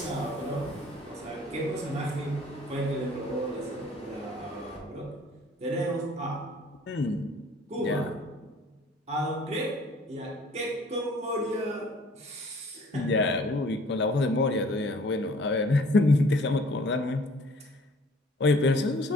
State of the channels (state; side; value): normal; both; correlation 0.54